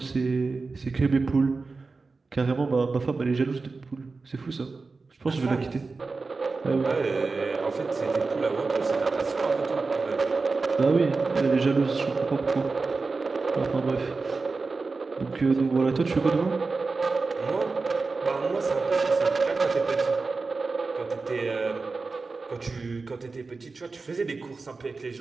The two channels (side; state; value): left; quieter; 4.0 dB